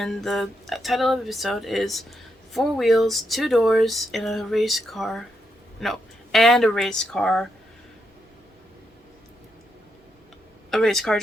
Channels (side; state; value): both; normal; correlation 0.82